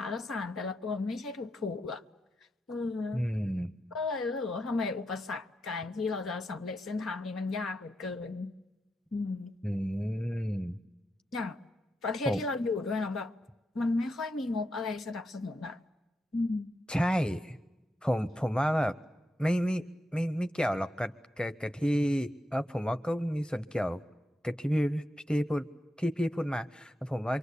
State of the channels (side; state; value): both; normal; correlation 0.85